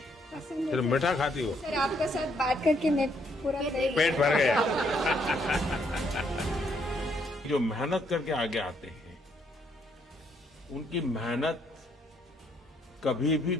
फिर मीठा खाती हो? सर आपके साथ बात करके मैं पूरा पेट भर गया। जो मेहनत करके आगे आते हैं, उनकी मेहनत कभी भी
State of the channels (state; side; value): normal; both; correlation 0.71